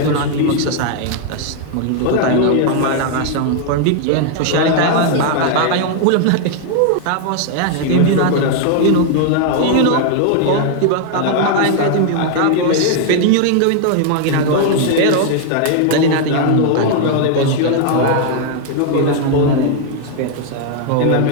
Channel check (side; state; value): both; different; correlation 0.00